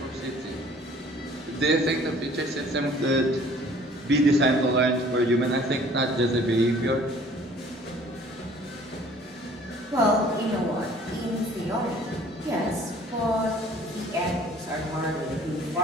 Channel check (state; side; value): normal; both; correlation 0.53